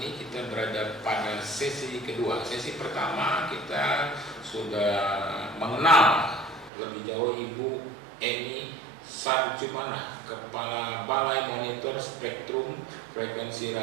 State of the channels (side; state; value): left; drops out; at 6.7 s